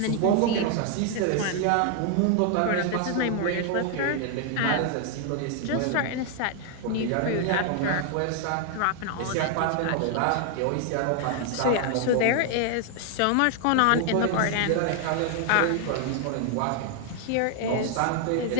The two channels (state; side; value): different; both; correlation 0.00